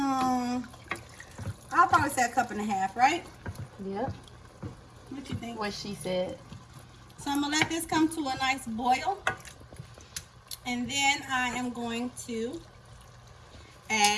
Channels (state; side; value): identical; both; correlation 1.00